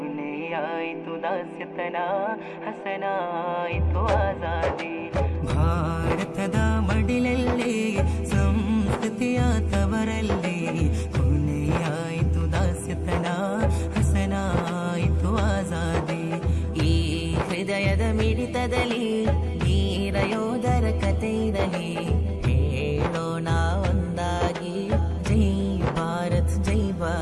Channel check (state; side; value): identical; both; correlation 1.00